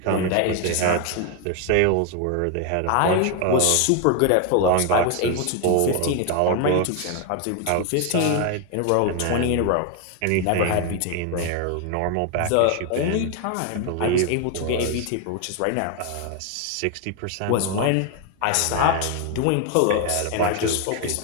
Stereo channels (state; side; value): different; both; correlation 0.01